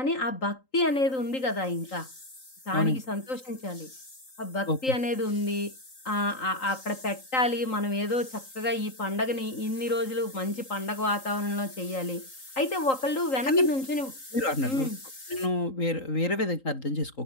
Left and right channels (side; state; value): right; late; 3.8 ms